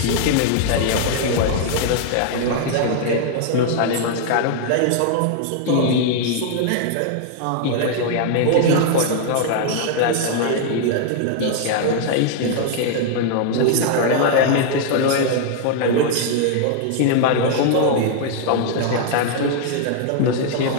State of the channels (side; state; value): both; different; correlation 0.00